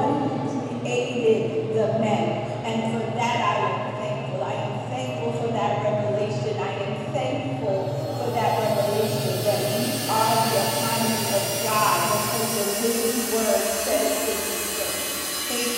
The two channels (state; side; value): identical; both; correlation 1.00